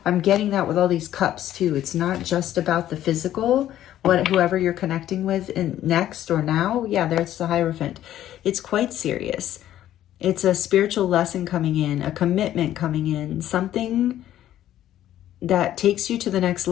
I'm getting that with all these cups too. It's not just about the physical, whoever you're connecting with in next or now. Yeah, there's the Hierophant. It's quite serious. It's a spiritual lesson coming in, a commitment coming in, something that takes you to the next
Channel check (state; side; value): quieter; right; 12.4 dB